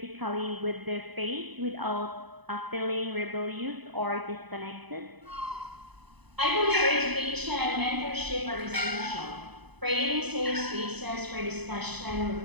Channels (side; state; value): left; late; 0.99 ms